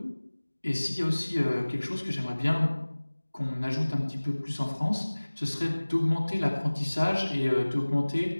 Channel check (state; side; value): inverted; both; correlation -1.00